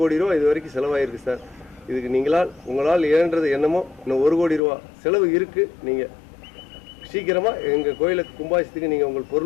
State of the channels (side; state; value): right; drops out; at 4.6 s